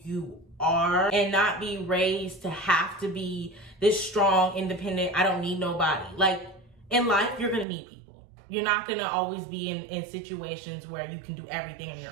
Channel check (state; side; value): drops out; left; at 7.7 s